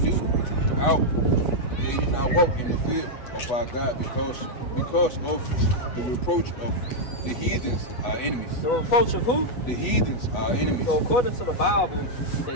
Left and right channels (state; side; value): late; right; 8.2 ms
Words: ye not walk in the field of our God because of the reproach of the heathens, our enemies. The reproach of who? The heathens, our enemies. So according to the Bible,